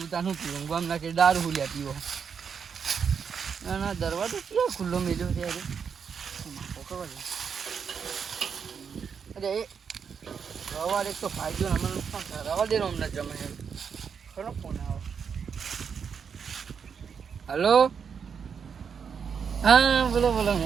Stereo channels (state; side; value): quieter; left; 6.7 dB